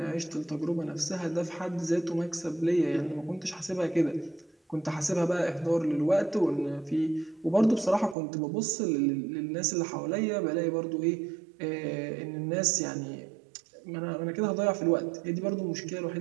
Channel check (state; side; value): drops out; left; at 8.2 s